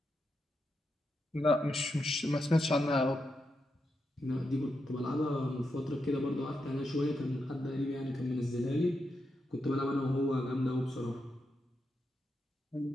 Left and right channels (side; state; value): both; normal; correlation 0.85